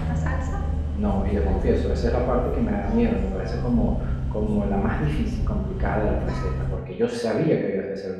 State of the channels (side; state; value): both; identical; correlation 1.00